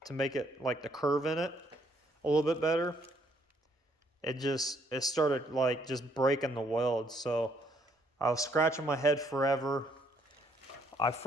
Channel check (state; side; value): normal; both; correlation 0.69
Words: to make it like the curve in it a little bit better, it started like just breaking the weld. So I was scratching my head forever. I